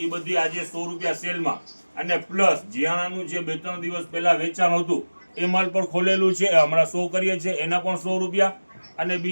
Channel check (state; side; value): inverted; both; correlation -1.00